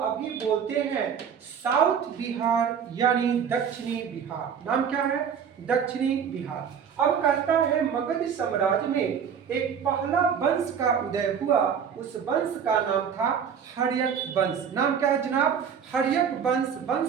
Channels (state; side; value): quieter; left; 7.4 dB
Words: बोलते हैं साउथ बिहार यानी दक्षिणी बिहार। नाम क्या है? दक्षिणी बिहार। अब कहता है मगध साम्राज्य में एक पहला वंश का उदय हुआ, उस वंश का नाम था हर्यक वंश। नाम क्या है जनाब? हर्यक वंश।